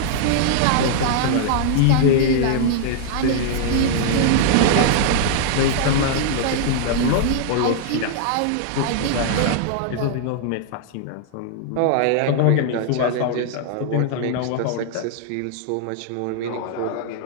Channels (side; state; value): both; different; correlation -0.01